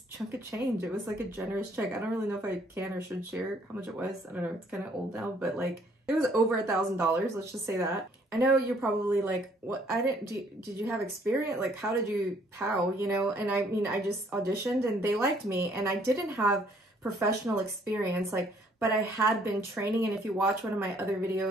chunk of change. It was like a generous check. I don't really know if I can or should share how much it was. I don't know, it's kind of old now, but like it was over $1,000, let's just say that. I know you're probably like, what, did you have experience? Like, how, you know? And I mean, I just auditioned and they liked me and I didn't have professional experience, like, but I had been training. And if you watch one of my other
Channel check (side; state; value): both; normal; correlation 0.63